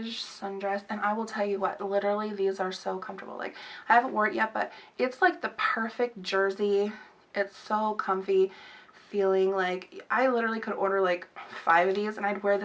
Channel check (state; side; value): identical; both; correlation 1.00